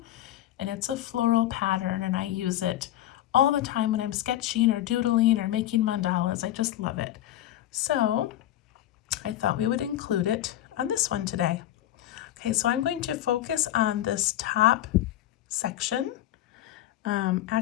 and it's a floral pattern, and I use it all the time when I'm sketching or doodling or making mandalas. I just love it. So I thought we would include it on this one today. Okay, so I'm going to focus on this top section.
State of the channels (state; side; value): quieter; right; 13.3 dB